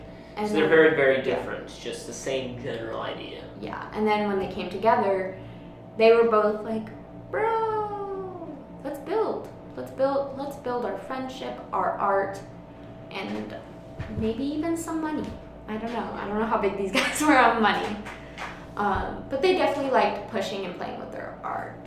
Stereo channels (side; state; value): both; identical; correlation 1.00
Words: And so they're very, very different. It's just the same general idea. yeah. And then when they came together, they were both like, bro, let's build our friendship, our art, and maybe even some money. I don't know how big these guys were on money. But they definitely liked pushing and playing with their